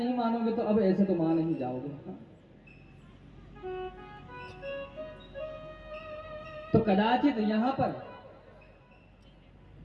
मानोगे तो अब ऐसे तो मान नहीं जाओगे। तो कदाचित यहाँ पर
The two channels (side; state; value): both; identical; correlation 1.00